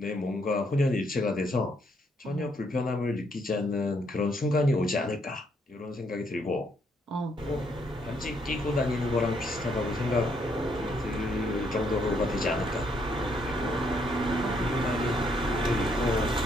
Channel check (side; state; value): both; normal; correlation 0.72